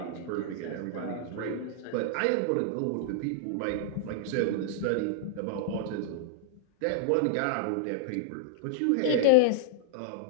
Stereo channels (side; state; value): both; different; correlation -0.01